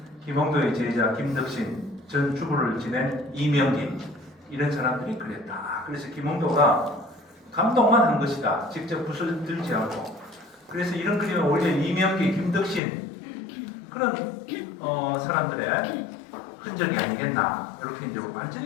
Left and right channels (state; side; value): drops out; right; at 12.8 s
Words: 김홍도의 제자 김덕신, 전주부를 지낸 이명기 이런 사람들이 그랬다. 그래서 김홍도가 감동만 한 것이다. 직접 붓을 들지 않고. 그래서 이런 그림은 오히려 이명기, 김덕신 그런 사람들의 흔적이 아니겠나. 이렇게 이제